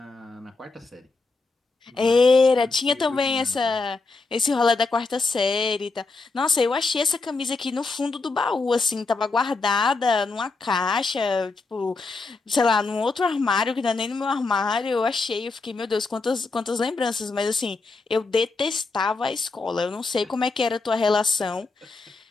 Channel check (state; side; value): quieter; right; 3.8 dB